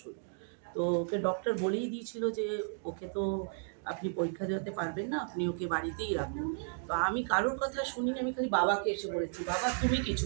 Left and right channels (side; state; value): left; silent; digital silence